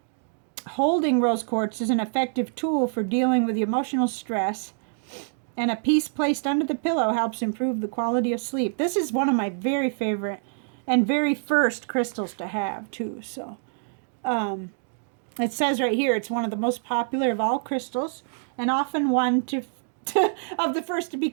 holding rose quartz is an effective tool for dealing with emotional stress, and a piece placed under the pillow helps improve the quality of sleep. This is one of my very favorite and very first crystals to have too. So it says right here it's one of the most popular of all crystals and often one of the first to be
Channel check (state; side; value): silent; left; digital silence